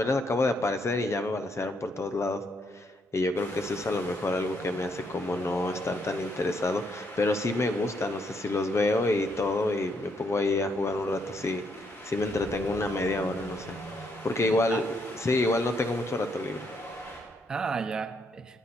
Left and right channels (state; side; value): normal; both; correlation 0.74